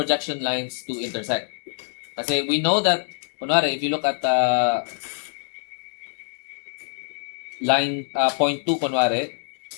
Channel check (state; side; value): silent; right; digital silence